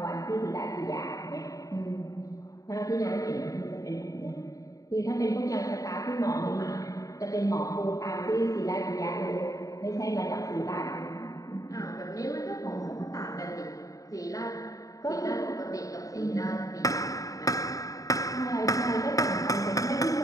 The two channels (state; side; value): late; right; 0.16 ms